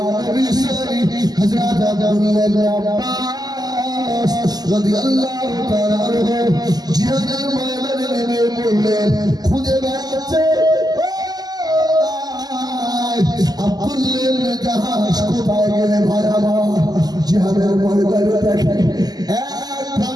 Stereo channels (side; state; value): left; late; 0.19 ms